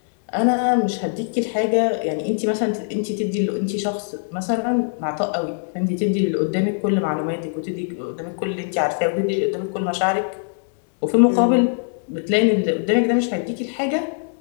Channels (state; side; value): silent; right; 64 dB below the other